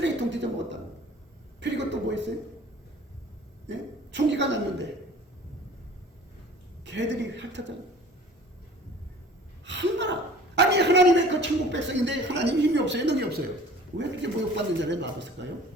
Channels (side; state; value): both; normal; correlation 0.47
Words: 뒤져 먹었다고. 그리고 또 뭐 있어요? 네? 총기가 났는데 개들이 핥았잖아요. 얼마나 아니 하나님의 그 천국 백성인데 하나님 힘이 없어요? 능이 없어요? 왜 그렇게 모욕받는 자리에 놔뒀을까요?